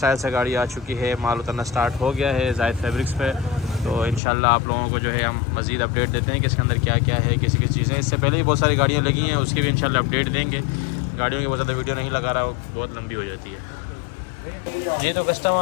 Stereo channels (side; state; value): right; drops out; at 4.2 s